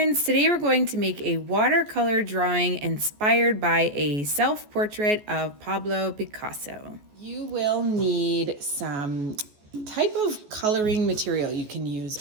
today we're going to make a watercolor drawing inspired by a self-portrait of Pablo Picasso. You will need some type of coloring material. You can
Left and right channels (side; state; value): left; late; 14 ms